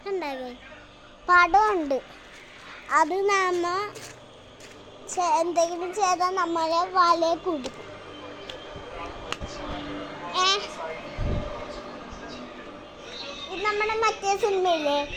പടമുണ്ട്. അത് നമ്മ എന്തെങ്കിലും ചെയ്താൽ നമ്മളെ വലയെ കുടിക്കും. ഇത് നമ്മുടെ മറ്റേ സിനിമയില്ലേ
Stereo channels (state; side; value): identical; both; correlation 1.00